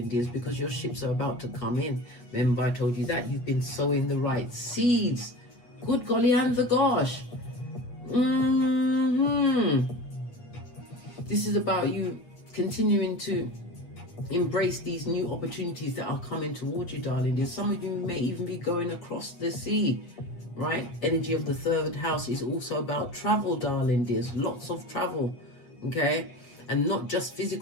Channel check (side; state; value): right; late; 8.5 ms